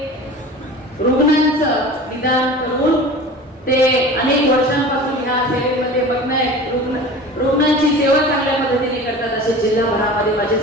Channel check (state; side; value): normal; both; correlation 0.37